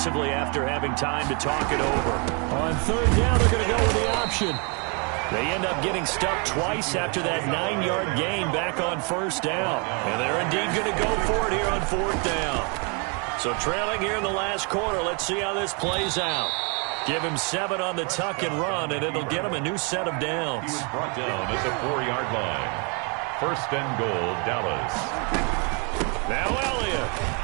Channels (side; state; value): left; quieter; 34.7 dB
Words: after having time to talk it over. On 3rd down, they're going to go with the option. They end up getting stuck twice after that 9-yard gain back on 1st down. And they're indeed going to go for it here on 4th down. So trailing here in the last quarter, let's see how this plays out. Give him 7 on the tuck and run, and it'll get him a new set of downs. He was brought down at the 4-yard line. 1st and goal, Dallas. Now Elliott,